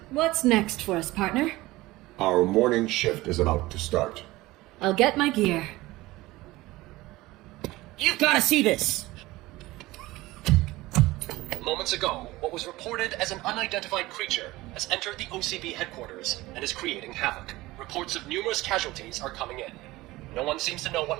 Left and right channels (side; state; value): left; quieter; 19.0 dB